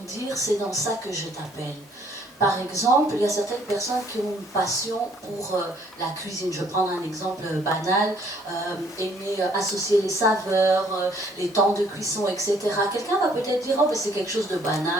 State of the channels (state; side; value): normal; both; correlation 0.62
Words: dire « c'est dans ça que je t'appelle ». Par exemple, il y a certaines personnes qui ont une passion pour la cuisine. Je vais prendre un exemple banal, aimer associer les saveurs, les temps de cuisson, etc. Quelqu'un va peut-être dire « oh, mais c'est quelque chose de